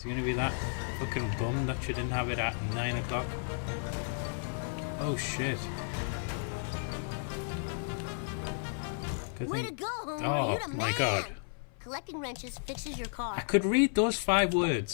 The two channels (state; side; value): silent; right; 56 dB below the other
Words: he gonna be that fucking bum that you didn't have it at 9 o'clock? Oh shit. Good Way thing. to go, Homer. Oh You're the my man. god. Collecting wrenches fixes your car. I could read those 5